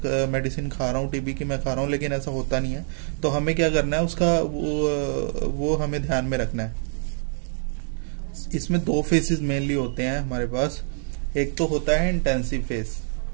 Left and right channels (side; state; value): left; silent; digital silence